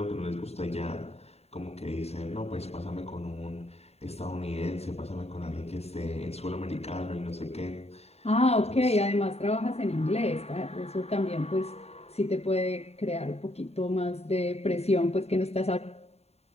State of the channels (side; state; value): right; late; 0.30 ms